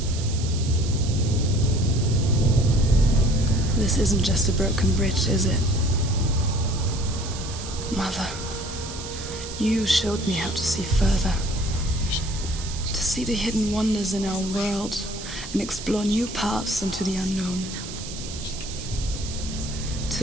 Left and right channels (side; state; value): right; noise; hiss, 11 dB below the sound